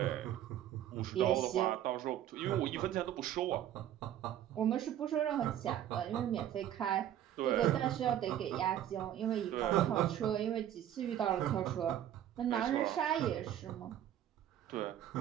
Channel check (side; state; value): left; quieter; 11.3 dB